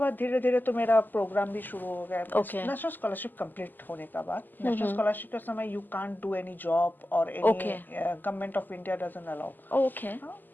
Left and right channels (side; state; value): right; late; 0.088 ms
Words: धीरे धीरे तो मेरा प्रोग्राम भी शुरू हो गया. नेशनल स्कॉलरशिप कंप्लीट होने का बाद, नेशनल स्कॉलरशिप के समय you can't do any job और any, government of India doesn't allow. Okay.